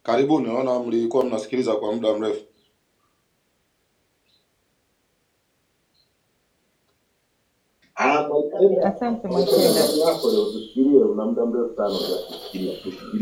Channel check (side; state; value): both; identical; correlation 1.00